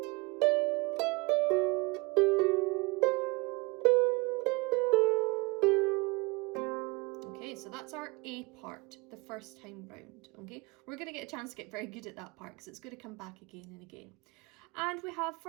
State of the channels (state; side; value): quieter; left; 26.7 dB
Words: Okay, so that's our A part, the first time round, okay? We're going to get a chance to get very good at that part because it's going to come back again and again. And we have,